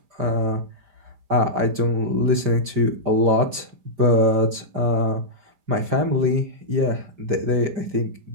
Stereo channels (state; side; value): late; left; 5.0 ms